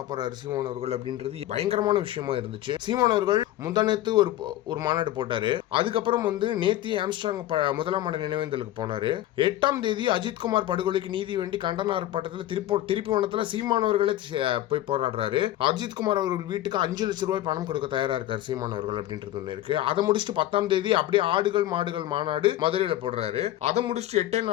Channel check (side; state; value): right; quieter; 14.0 dB